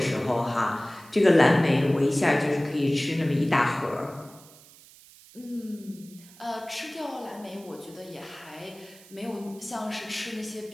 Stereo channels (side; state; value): right; noise; hiss, 23 dB below the sound